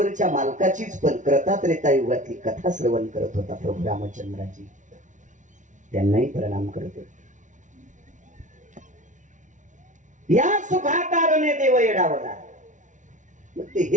मालकाचीच पण कृतात्रेता युगातली कथा श्रवण करत होता प्रभू रामचंद्राची. त्यांनाही प्रणाम करतो. या सुखाकारणे देव येडावला. मग ते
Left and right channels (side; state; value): left; late; 0.37 ms